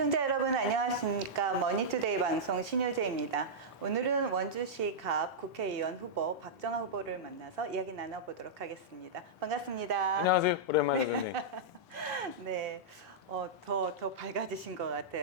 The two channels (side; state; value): both; normal; correlation -0.10